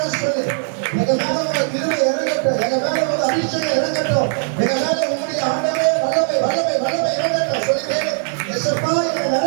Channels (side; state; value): left; silent; digital silence